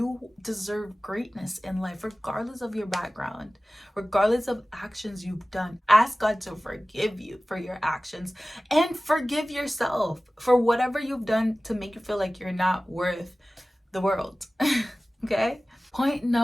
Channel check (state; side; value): normal; both; correlation 0.97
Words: deserve greatness in life, regardless of your background, regardless of actions you've done. Ask God to forgive you for your actions and forgive yourself for whatever you've done to make you feel like you're not worth the world. Okay? Point